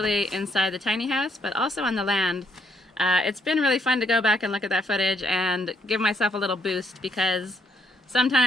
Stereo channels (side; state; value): both; normal; correlation 0.73